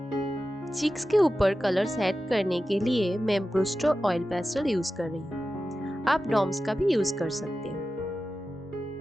चीक्स के ऊपर कलर्स ऐड करने के लिए मैं ब्रूस्टर ऑयल पेस्टल यूज कर रही हूँ। आप डॉम्स का भी यूज कर सकते हैं।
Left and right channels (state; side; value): normal; both; correlation 0.93